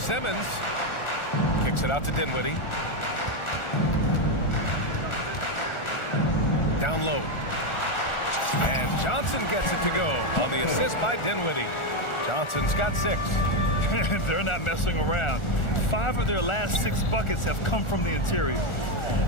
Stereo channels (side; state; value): right; late; 1.4 ms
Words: Kicks it out to Dinwiddie. Down low. And Johnson gets it to go on the assist by Dinwiddie. Johnson's got 6. They're not messing around. 5 of their last 6 buckets have come from the interior.